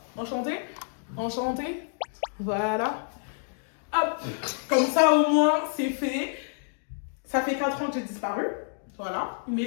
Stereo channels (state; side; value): silent; right; digital silence